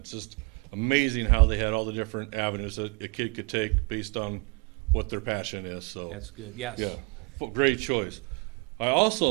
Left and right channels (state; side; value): quieter; left; 29.4 dB